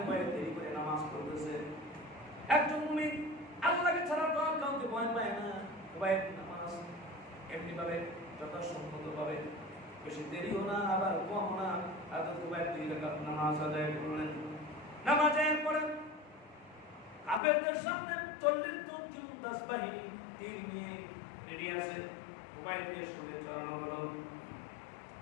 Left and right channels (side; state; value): right; drops out; at 17.4 s